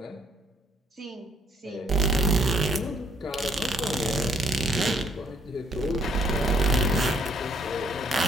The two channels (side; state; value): both; normal; correlation 0.66